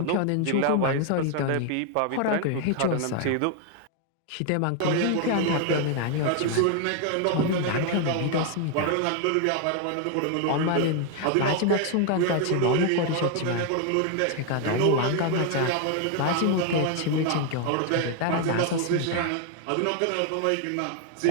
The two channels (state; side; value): different; both; correlation 0.00